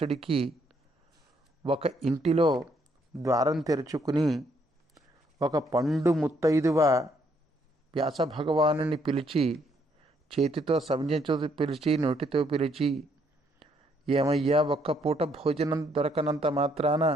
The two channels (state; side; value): normal; both; correlation 0.70